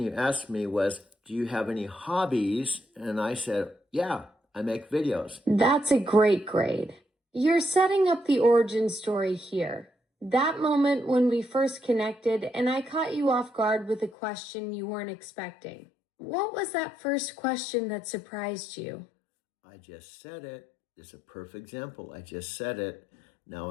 asked me was, do you have any hobbies? And I said, yeah, I make videos. That's a great grade. You're setting up the origin story here. That moment when we first connected and I caught you off guard with a question you weren't expecting. What was that first question that surprised you? I just said it. It's a perfect example. I just said it. Now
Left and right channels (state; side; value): drops out; right; at 14.1 s